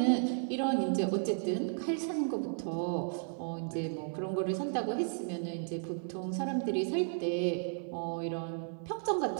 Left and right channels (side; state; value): left; silent; 55 dB below the other